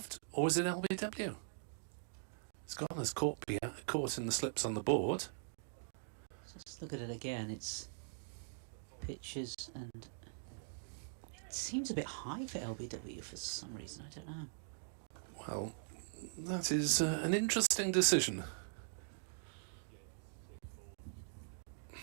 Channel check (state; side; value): silent; left; digital silence